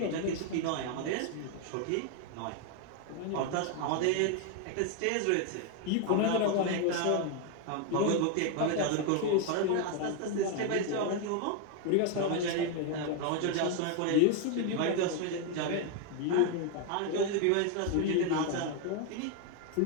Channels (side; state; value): both; different; correlation 0.01